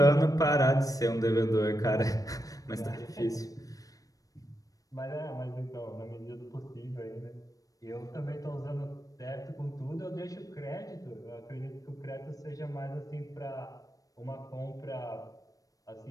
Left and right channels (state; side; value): late; right; 0.17 ms